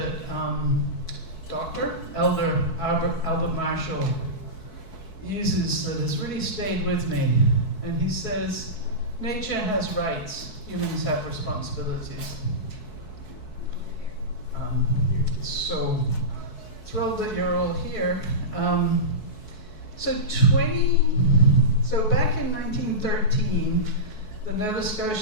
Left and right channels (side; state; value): right; late; 4.6 ms